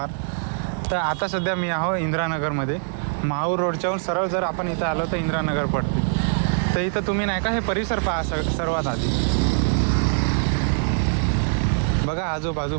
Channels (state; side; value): silent; left; digital silence